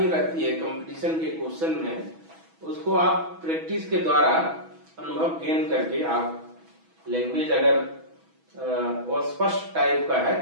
रहती है कंपटीशन के क्वेश्चन में। उसको आप प्रैक्टिस के द्वारा अनुभव गेन करके आप लैंग्वेज अगर स्पष्ट टाइप का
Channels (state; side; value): late; left; 6.1 ms